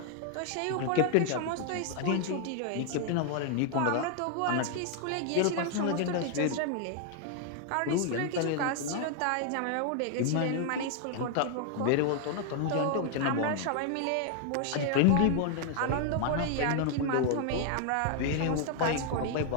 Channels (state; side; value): different; both; correlation 0.00